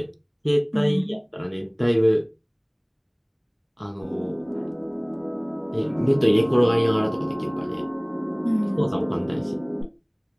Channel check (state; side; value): identical; both; correlation 1.00